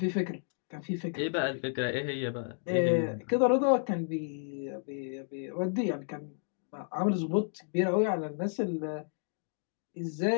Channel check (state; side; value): silent; right; digital silence